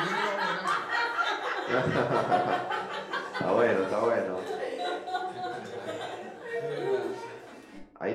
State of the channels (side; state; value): both; identical; correlation 1.00